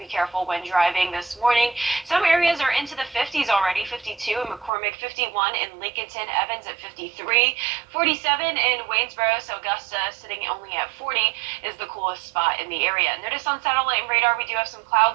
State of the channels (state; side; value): drops out; left; at 4.7 s